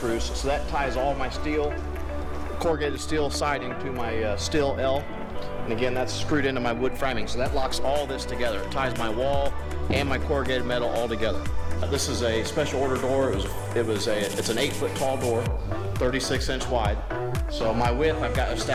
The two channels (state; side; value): identical; both; correlation 1.00